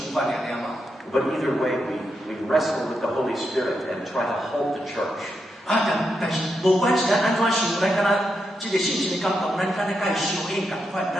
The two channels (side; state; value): both; normal; correlation 0.84